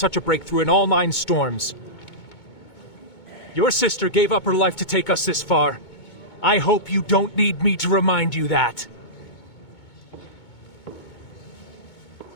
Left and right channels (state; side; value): late; right; 2.2 ms